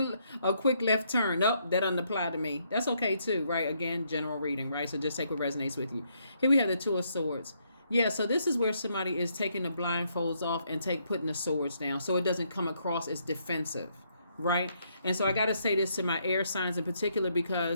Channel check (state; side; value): inverted; both; correlation -0.74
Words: quick left turn. Nope, that doesn't apply to me. That's okay too, right? Again, general reading, right? So just take what resonates with you. Here we have the Two of Swords. Yeah, so this is where somebody is taking the blindfolds off and putting the swords down so it doesn't come across as defensive, right? And so I got to say this to my air signs in particular